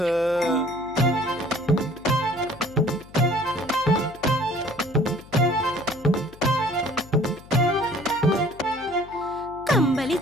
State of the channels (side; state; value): left; noise; hum, 21 dB below the sound